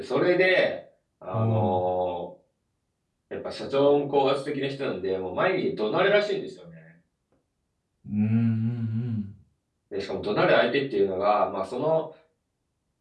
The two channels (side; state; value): both; identical; correlation 1.00